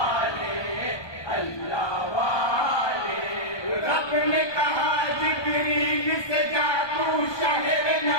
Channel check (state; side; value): late; right; 1.2 ms